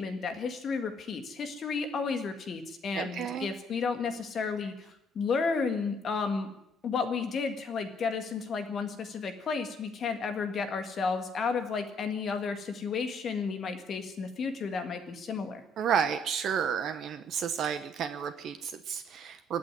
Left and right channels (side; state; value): both; normal; correlation 0.65